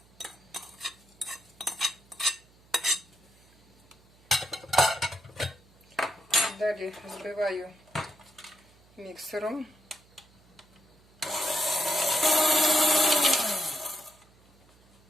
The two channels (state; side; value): noise; right; hum, 30 dB below the sound